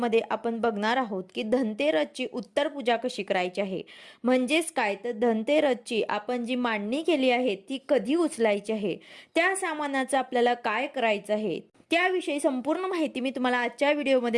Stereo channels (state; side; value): identical; both; correlation 1.00